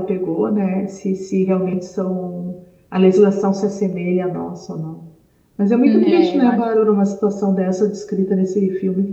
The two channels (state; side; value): identical; both; correlation 1.00